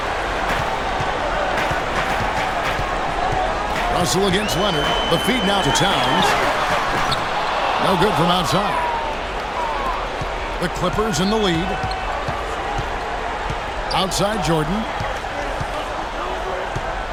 Russell against Leonard. The feed now to Towns. No good from outside. The Clippers in the lead. Outside Jordan.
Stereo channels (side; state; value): both; identical; correlation 1.00